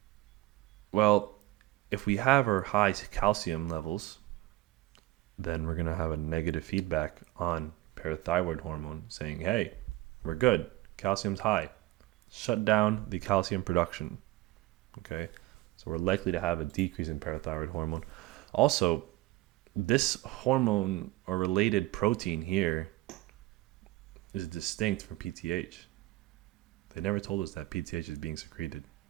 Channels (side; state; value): left; quieter; 17.9 dB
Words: Well, if we have our high calcium levels, then we're going to have a negative feedback on parathyroid hormone saying, hey, we're good. Calcium's high. Shut down the calcium production. Okay, so we're likely to have a decrease in parathyroid hormone. Also, this hormone or related protein here is distinct from PTH. They never told us that PTH is being secreted.